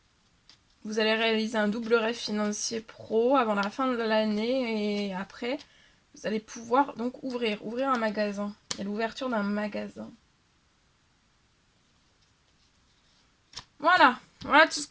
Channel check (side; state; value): both; identical; correlation 1.00